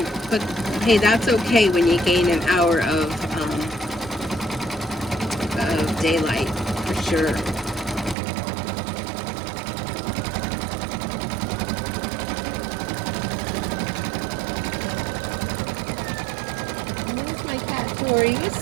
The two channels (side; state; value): left; drops out; at 8.2 s